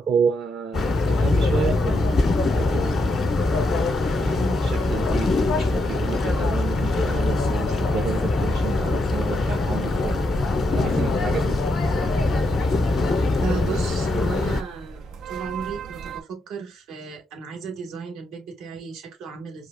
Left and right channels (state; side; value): normal; both; correlation 0.81